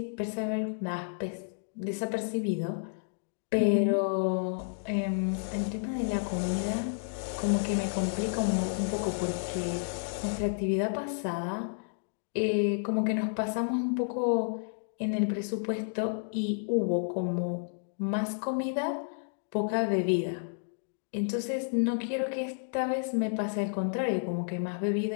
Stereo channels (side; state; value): right; silent; digital silence